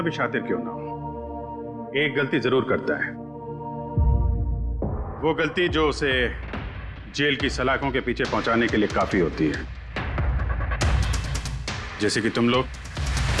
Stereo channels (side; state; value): both; identical; correlation 1.00